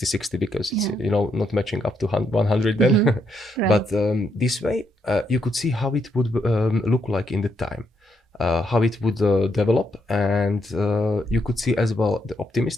because it's not matching up to 100 then. But this way you could see how it would look like in the time, how it would develop, and you could see as well the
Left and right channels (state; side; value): normal; both; correlation 0.77